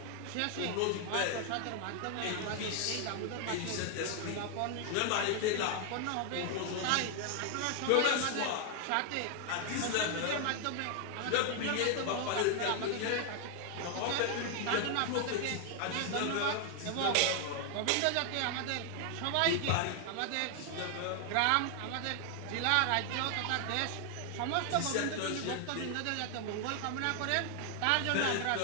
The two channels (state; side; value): different; both; correlation 0.00